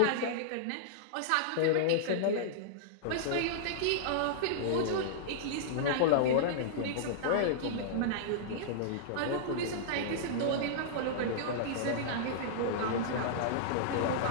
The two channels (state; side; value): different; both; correlation -0.02